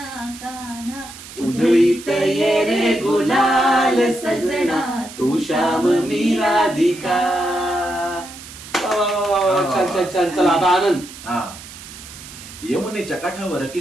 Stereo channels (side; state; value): right; noise; hiss, 15 dB below the sound